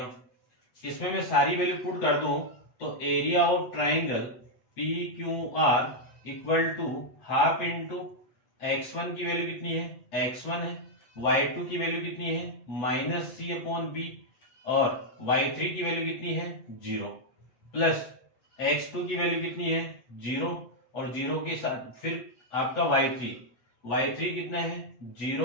इसमें मैं सारी वैल्यू पुट कर दूं तो area of triangle PQR equal to half into x1 की वैल्यू कितनी है, x1 है, y2 की वैल्यू कितनी है -c अपॉन b, और y3 की वैल्यू कितनी है 0, प्लस x2 की वैल्यू कितनी है 0, और 0 के साथ फिर आपका y3 कितना है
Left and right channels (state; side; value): late; right; 8.1 ms